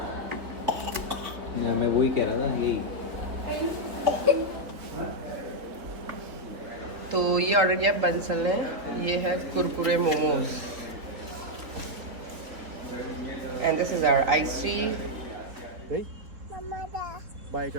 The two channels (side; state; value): left; late; 3.9 ms